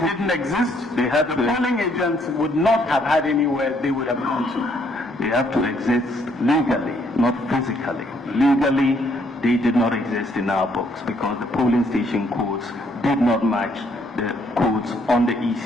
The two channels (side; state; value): both; normal; correlation 0.69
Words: didn't exist, They had the to- polling agents would not have had anywhere they would have gone to. They have to exist legally, not physically. Legally, they did not exist in our books because the polling station codes did not match the codes on the